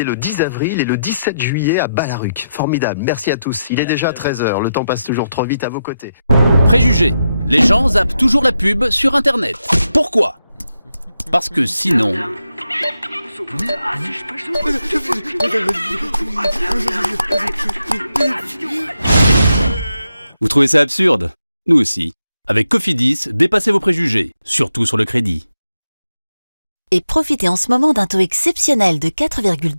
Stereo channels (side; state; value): both; inverted; correlation -0.86